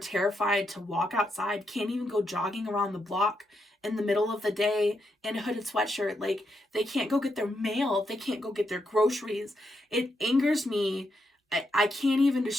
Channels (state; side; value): normal; both; correlation 0.81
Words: to walk outside, can't even go jogging around the block in the middle of the day in a hooded sweatshirt. Like, they can't go get their mail. They can't go get their groceries. It angers me. I can't even